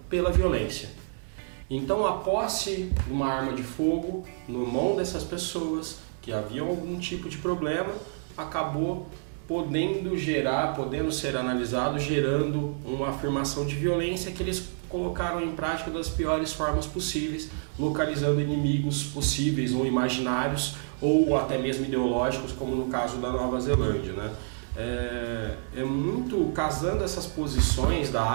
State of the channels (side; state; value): left; silent; digital silence